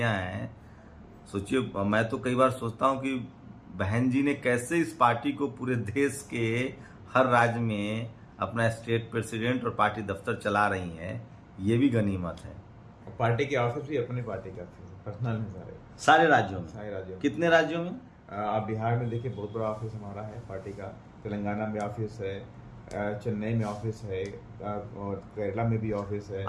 हैं। सोचिए, मैं तो कई बार सोचता हूं कि बहन जी ने कैसे इस पार्टी को पूरे देश के हर राज्य में अपना स्टेट प्रेसिडेंट और पार्टी दफ्तर चला रही हैं, ये भी गनीमत है। पार्टी के ऑफिस भी अपने पार्टी का पर्सनल है सारे राज्यों में। सारे राज्यों में। कितने राज्यों में? आप बिहार में देखिए, बहुत बड़ा ऑफिस हमारा है पार्टी का। तेलंगाना में ऑफिस है, चेन्नई में ऑफिस है, और केरला में भी ऑफिस है।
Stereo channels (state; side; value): identical; both; correlation 1.00